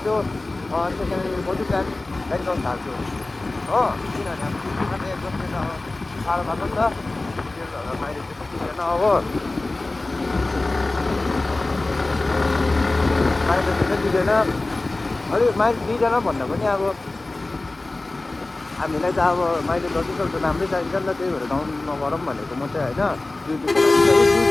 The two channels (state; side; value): quieter; right; 3.0 dB